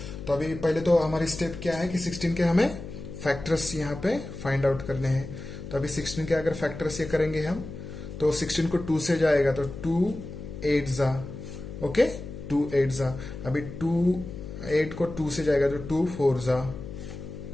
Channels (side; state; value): left; noise; hum, 10 dB below the sound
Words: तो अभी पहले तो हमारी स्टेप क्या है कि 16 के हमें फैक्टर्स यहाँ पे फाइंड आउट करने हैं. तो अभी 16 के अगर फैक्टर्स ये करेंगे हम तो 16 को 2 से जाएगा तो 2 8 जा. ओके, 2 8 जा. अभी 8 को 2 से जाएगा तो 2 4 जा.